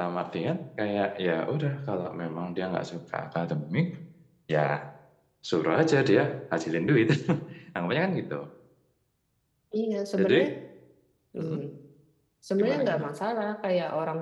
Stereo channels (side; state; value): both; identical; correlation 1.00